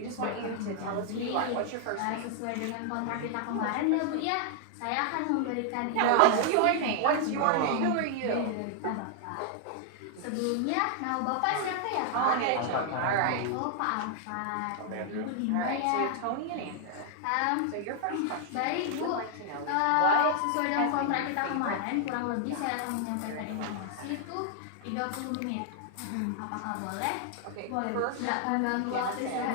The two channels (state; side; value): different; both; correlation 0.00